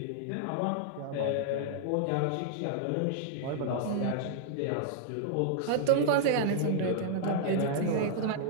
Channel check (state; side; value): different; both; correlation -0.01